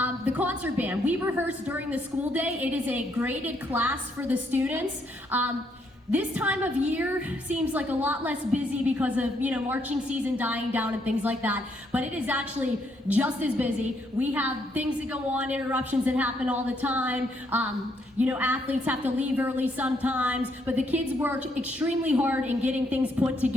the concert band, we rehearse during the school day. It is a graded class for the students. This time of year seems like a lot less busy because of, marching season dying down and things like that, but it is actually just as busy. We have things that go on, interruptions that happen all the time. Athletes have to leave early sometimes, but the kids work extremely hard in getting things put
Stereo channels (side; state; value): both; normal; correlation 0.73